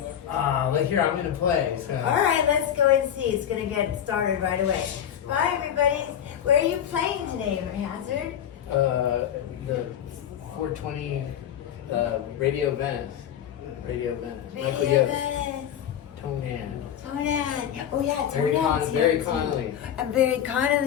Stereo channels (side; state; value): right; quieter; 9.7 dB